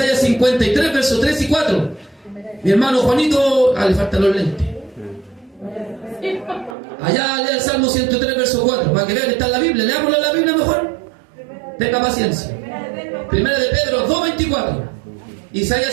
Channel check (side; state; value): left; drops out; at 6.8 s